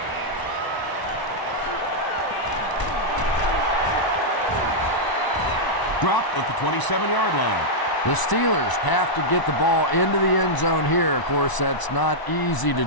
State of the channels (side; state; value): right; late; 1.0 ms